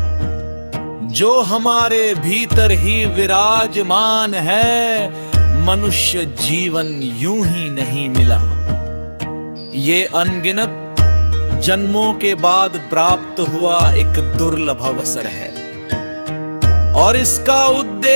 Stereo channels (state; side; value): inverted; both; correlation -1.00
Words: जो हमारे भीतर ही विराजमान है। मनुष्य जीवन यूं ही नहीं मिला, ये अनगिनत जन्मों के बाद प्राप्त हुआ एक दुर्लभ अवसर है और इसका